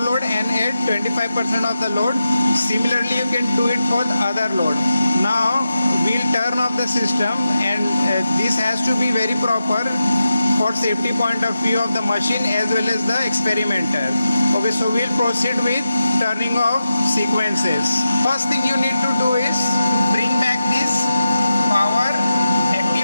and at 25% of the load. Similarly, you can do it for the other load. Now we'll turn off the system, and this has to be very proper for safety point of view of the machine as well as the experimenter. Okay, so we'll proceed with turning off sequences. First thing you need to do is bring back this power,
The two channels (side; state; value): both; inverted; correlation -0.91